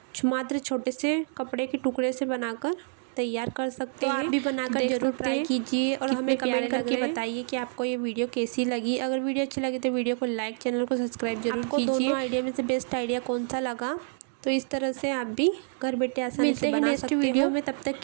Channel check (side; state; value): left; silent; 58 dB below the other